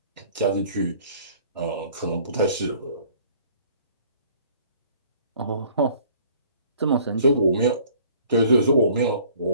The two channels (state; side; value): inverted; both; correlation -0.55